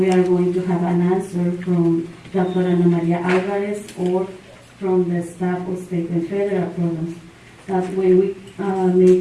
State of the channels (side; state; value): both; identical; correlation 1.00